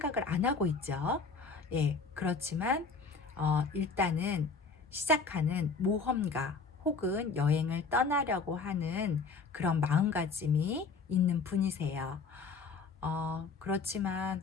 안 하고 있죠. 예, 그렇지만 일단은 시작하는 모험가 혹은 여행을 떠나려고 하는 그런 마음가짐이 있는 분이세요. 그렇지만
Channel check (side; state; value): right; quieter; 4.7 dB